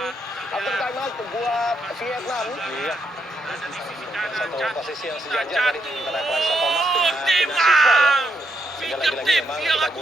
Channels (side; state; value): both; normal; correlation 0.80